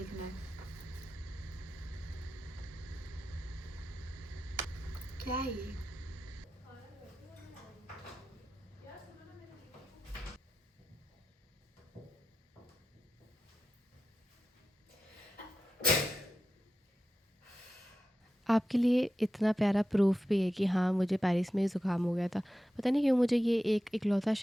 है। क्या है ये? आपके लिए इतना प्यारा प्रूफ भी है कि हाँ, मुझे पेरिस में ही ज़ुकाम हो गया था। पता नहीं क्यों मुझे ये एक इकलौता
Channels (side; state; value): both; normal; correlation 0.91